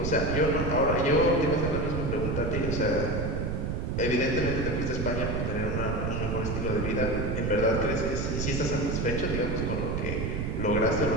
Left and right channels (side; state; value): right; noise; rumble, 1 dB below the sound